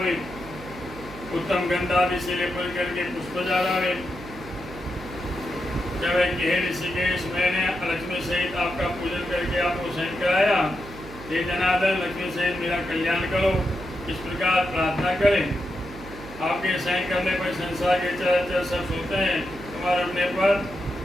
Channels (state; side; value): noise; right; hum, 14 dB below the sound